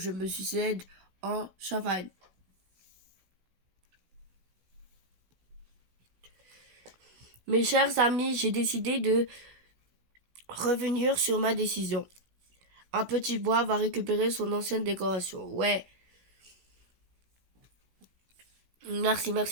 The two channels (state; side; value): late; left; 16 ms